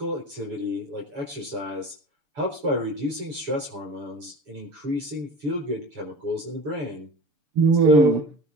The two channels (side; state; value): left; late; 6.8 ms